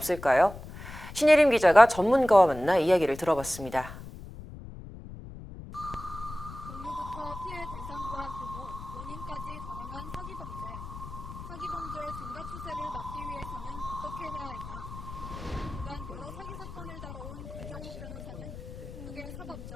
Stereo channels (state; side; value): noise; left; rumble, 12 dB below the sound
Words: 신예림 기자가 전문가와 만나 이야기를 들어봤습니다. 종류부터 피해 대상과 규모, 원인까지 다양한 사기 범죄. 사기 범죄의 증가 추세를 막기 위해서는 어떻게 해야 할까? 그간 여러 사기 사건을 다뤄온 김정묵 변호사는 크게